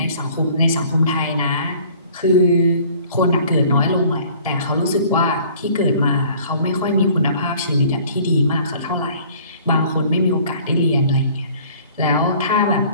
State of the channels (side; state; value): both; inverted; correlation -0.53